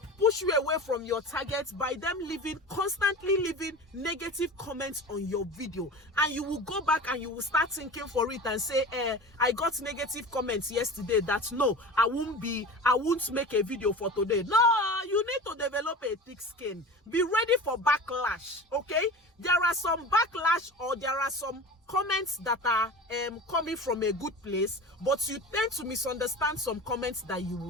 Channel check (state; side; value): normal; both; correlation 0.34